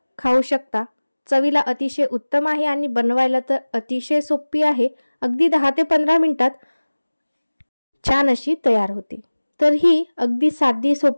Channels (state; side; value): inverted; both; correlation -1.00